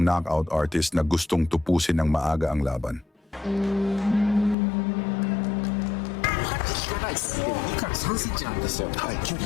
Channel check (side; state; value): right; drops out; at 4.5 s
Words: knockout artist na gustong tupusin ng maaga ang laban.